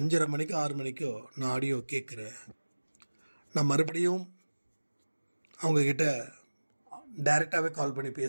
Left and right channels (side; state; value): both; inverted; correlation -1.00